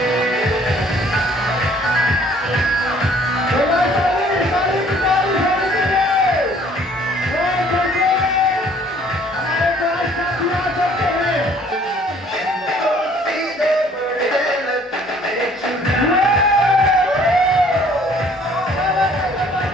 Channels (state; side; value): normal; both; correlation 0.57